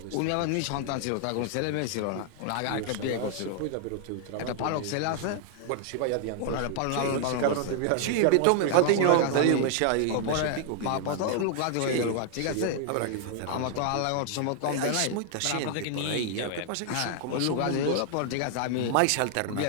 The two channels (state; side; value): different; both; correlation 0.00